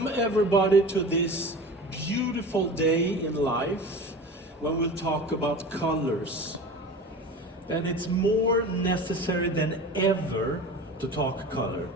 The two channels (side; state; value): both; normal; correlation 0.35